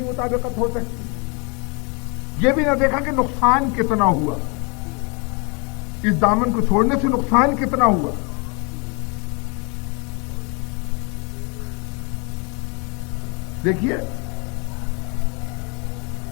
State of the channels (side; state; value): right; quieter; 32.9 dB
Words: مطابقت ہو سکتی؟ یہ بھی نہ دیکھا کہ نقصان کتنا ہوا، اس دامن کو چھوڑنے سے نقصان کتنا ہوا۔ دیکھیے